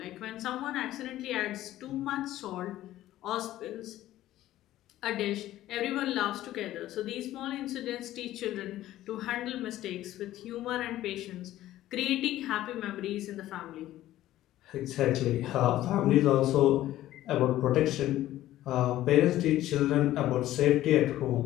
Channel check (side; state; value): right; quieter; 14.3 dB